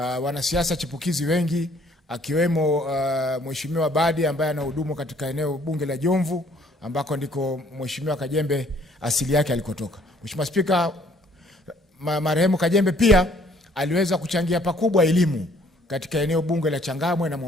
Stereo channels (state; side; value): normal; both; correlation 0.61